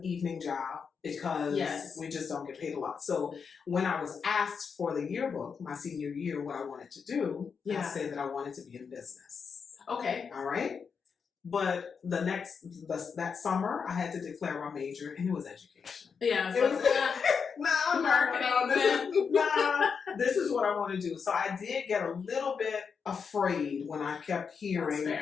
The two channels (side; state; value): right; quieter; 6.0 dB